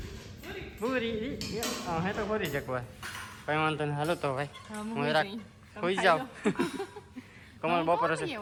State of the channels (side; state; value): both; identical; correlation 1.00